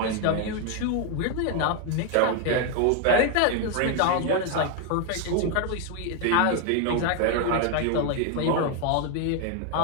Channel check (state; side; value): different; both; correlation 0.01